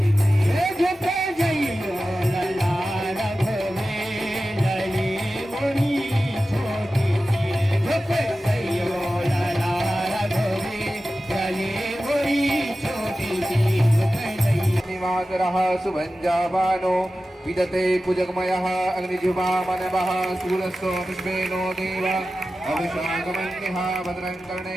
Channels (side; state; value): both; normal; correlation 0.94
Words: सुभंजावानो विदते कुजगमयः अग्निजुबामनवः सूरस्तो विश्वेनो देव अभिषागमन्यः भद्रं